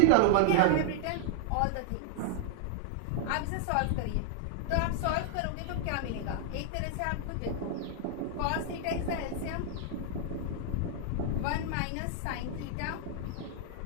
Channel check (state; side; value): different; both; correlation 0.00